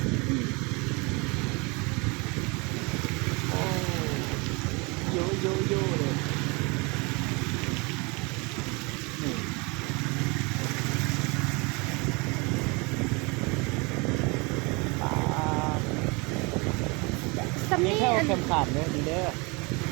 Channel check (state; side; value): quieter; left; 28.3 dB